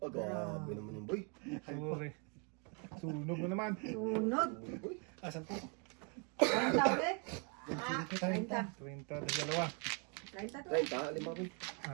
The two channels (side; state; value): left; quieter; 36.5 dB